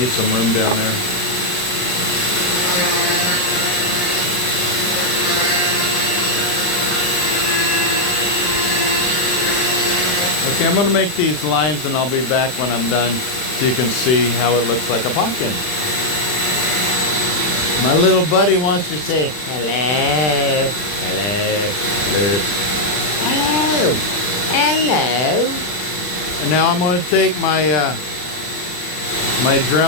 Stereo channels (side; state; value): right; late; 39 ms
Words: some room down there. Okay, I'm going to make these lines and I'll be back when I'm done so you can see how it looks like a pumpkin. My little buddy wants to say hello, hello, hello, hello, hello. And now I'm going to take my my